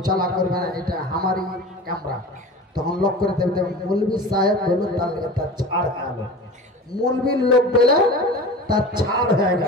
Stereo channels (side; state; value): both; normal; correlation 0.35